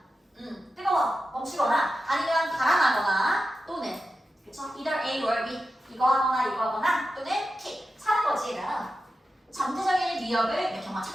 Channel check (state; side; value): normal; both; correlation 0.91